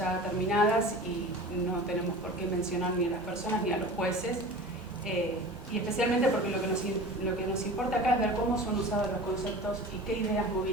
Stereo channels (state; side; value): normal; both; correlation 0.36